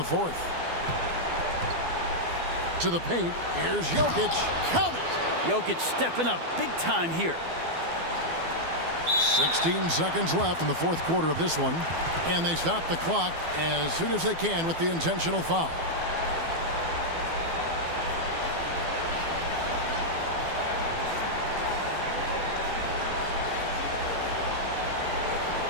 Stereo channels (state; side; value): late; left; 12 ms